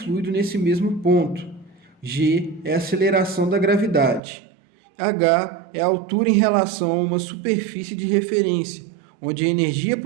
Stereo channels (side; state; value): left; drops out; at 4.2 s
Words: nesse mesmo ponto. G é a aceleração da gravidade. H é a altura em relação a uma superfície de referência, onde a energia